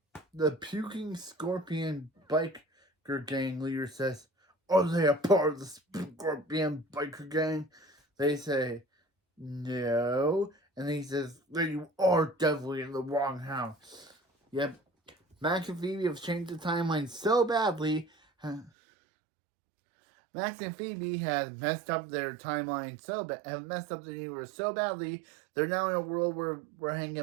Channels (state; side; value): drops out; left; at 18.7 s